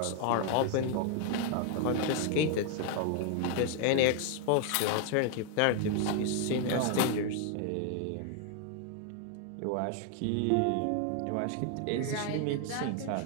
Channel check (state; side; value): different; both; correlation 0.00